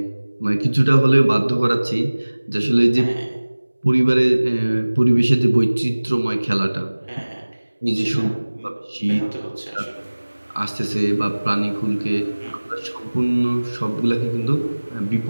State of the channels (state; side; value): inverted; both; correlation -1.00